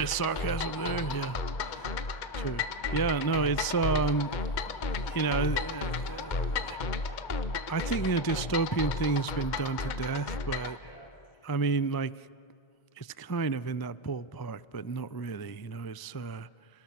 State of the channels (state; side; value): late; right; 1.0 ms